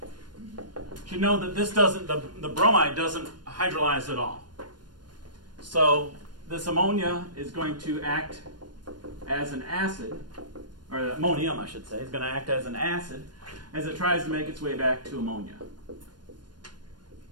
You should know that this doesn't, the bromide doesn't hydrolyze at all. So this ammonia is going to act as an acid, or ammonium, I should say, is going to act as an acid as it tries to make its way back to ammonia.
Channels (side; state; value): left; late; 0.71 ms